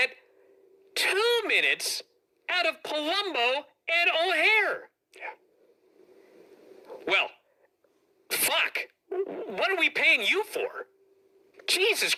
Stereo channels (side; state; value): both; identical; correlation 1.00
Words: 2 minutes out of Palumbo and O'Hare. Yeah. Well, fuck. What are we paying you for? Jesus